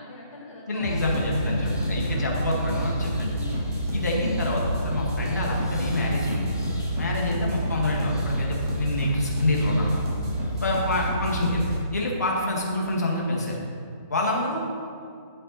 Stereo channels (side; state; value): both; inverted; correlation -0.64